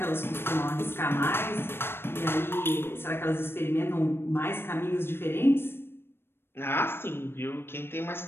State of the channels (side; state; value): right; late; 0.11 ms